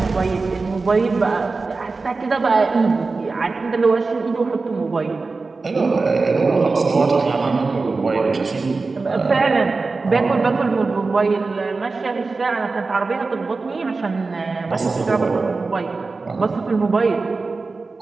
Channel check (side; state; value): left; quieter; 4.0 dB